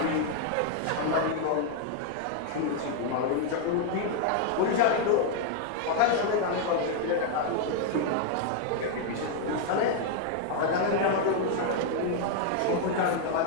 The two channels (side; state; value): both; different; correlation 0.00